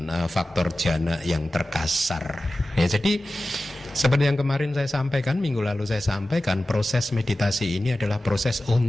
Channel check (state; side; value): normal; both; correlation 0.95